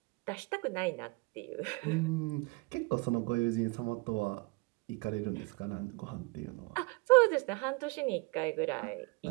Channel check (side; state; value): left; quieter; 26.7 dB